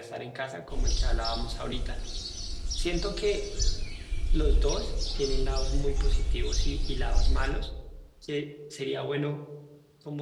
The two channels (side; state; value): both; identical; correlation 1.00